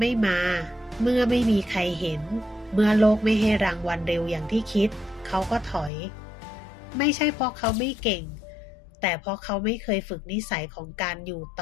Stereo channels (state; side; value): drops out; right; at 5.9 s